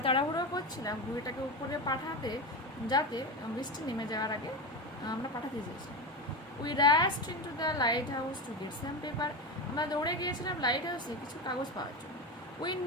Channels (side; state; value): both; normal; correlation 0.19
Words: তাড়াহুড়ো করছিলাম ঘুড়িটাকে উপরে পাঠাতে, যাতে বৃষ্টি নেমে যাওয়ার আগে আমরা পাঠাতে চেয়েছিলাম। We rushed into the lighthouse to get some paper. আমরা দৌড়ে গিয়েছিলাম লাইট হাউসে কিছু কাগজ পাওয়ার জন্য। We